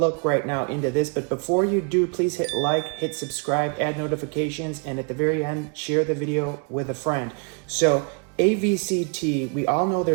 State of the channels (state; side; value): quieter; left; 36.8 dB